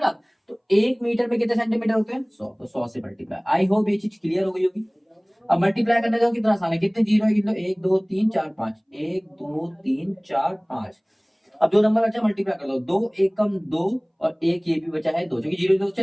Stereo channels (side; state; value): both; identical; correlation 1.00